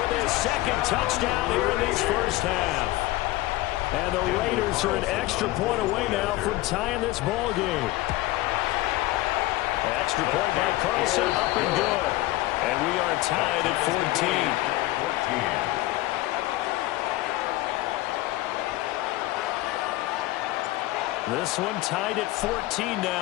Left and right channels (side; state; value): right; quieter; 18.0 dB